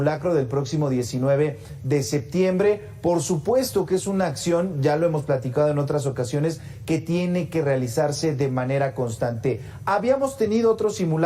del próximo 19 de septiembre. Por supuesto que es una acción, ya lo hemos platicado en otras ocasiones, que tiene que realizarse de manera constante. ¿Habíamos tenido otros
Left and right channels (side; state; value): both; identical; correlation 1.00